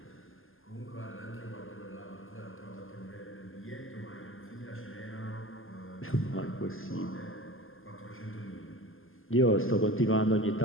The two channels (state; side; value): late; right; 0.59 ms